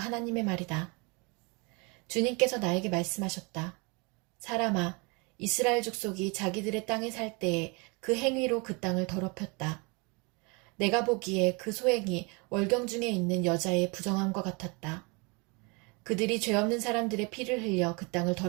말이다. 주님께서 나에게 말씀하셨다. 사람아, 이스라엘 족속이 자기들의 땅에 살 때에 그 행위로 그 땅을 더럽혔다. 내가 보기에 그 소행이 월경 중에 있는 여자의 부정함과 같았다. 그들이 죄 없는 사람들의 피를 흘려 그 땅을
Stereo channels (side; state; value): left; quieter; 29.9 dB